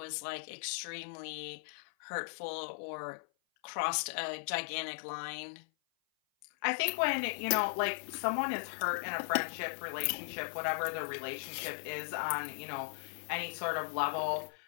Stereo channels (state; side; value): silent; right; 53 dB below the other